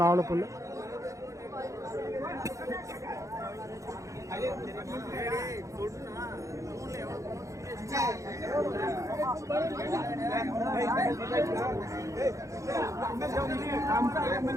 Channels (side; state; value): left; late; 0.15 ms